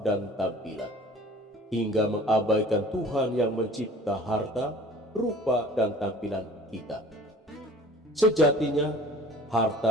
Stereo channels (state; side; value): normal; both; correlation 0.47